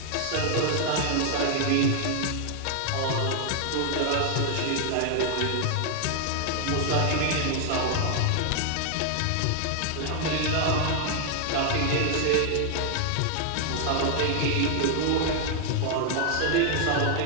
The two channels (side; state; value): both; different; correlation 0.00